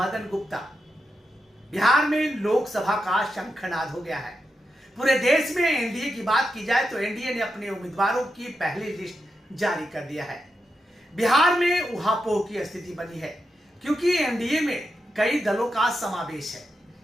Gupta. Bihar में लोकसभा का शंखनाद हो गया है। पूरे देश में एनडीए की बात की जाए तो एनडीए ने अपने उम्मीदवारों की पहली लिस्ट जारी कर दिया है। बिहार में उहापोह की स्थिति बनी है क्योंकि एनडीए में कई दलों का समावेश है।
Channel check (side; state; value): both; normal; correlation 0.87